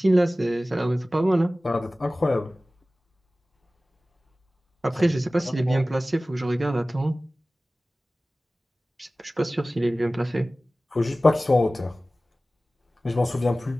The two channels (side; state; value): both; normal; correlation 0.97